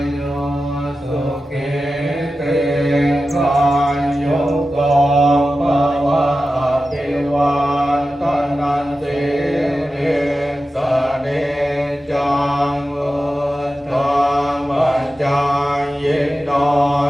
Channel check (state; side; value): normal; both; correlation 0.93